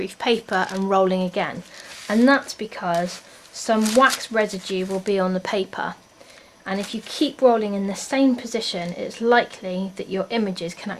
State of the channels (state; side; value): identical; both; correlation 1.00